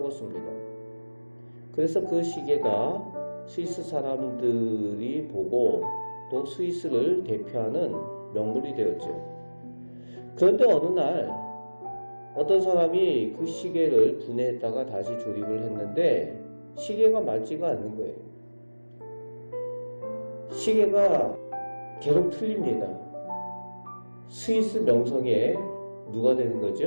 그래서 그 시계가 스위스 사람들이 보고 또 스위스를 대표하는 명물이 되었죠. 그런데 어느 날 어떤 사람이 그 시계를 분해했다가 다시 조립을 했는데 시계가 맞지가 않는 거예요. 시계가 계속 틀립니다. 스위스 명성에 누가 되는 거죠?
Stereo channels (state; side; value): inverted; both; correlation -1.00